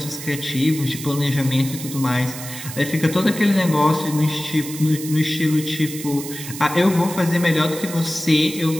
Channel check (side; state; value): right; noise; hiss, 10 dB below the sound